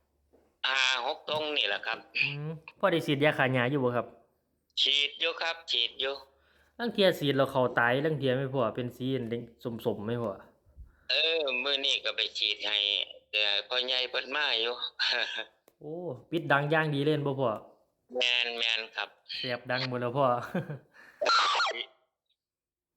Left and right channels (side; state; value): both; identical; correlation 1.00